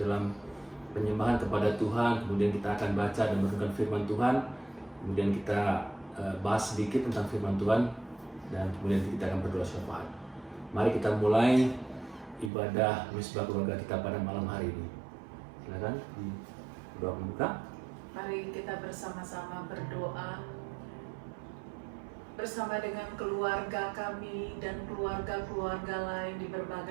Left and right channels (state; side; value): drops out; left; at 12.5 s